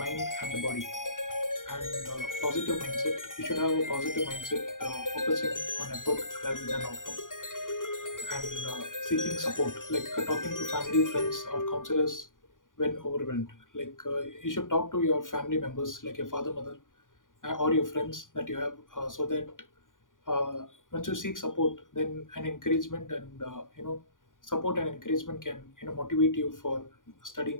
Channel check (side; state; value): right; late; 0.89 ms